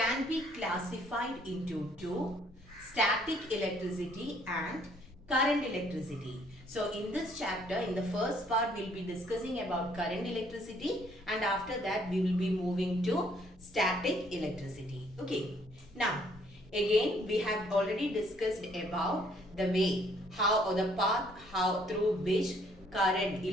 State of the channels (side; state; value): right; noise; rumble, 27 dB below the sound